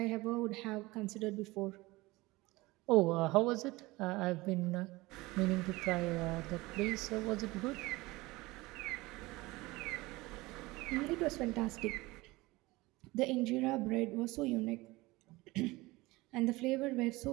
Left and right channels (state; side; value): quieter; left; 21.1 dB